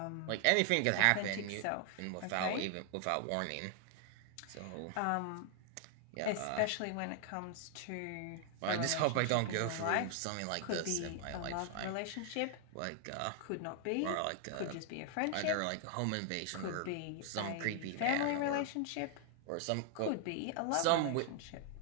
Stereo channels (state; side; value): different; both; correlation 0.00